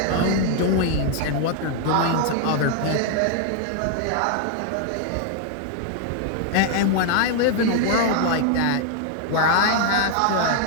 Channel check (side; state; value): both; different; correlation 0.00